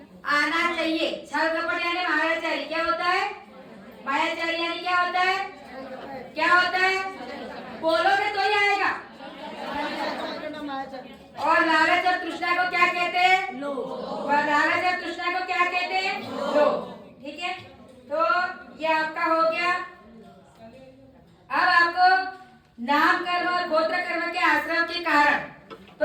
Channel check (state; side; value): identical; both; correlation 1.00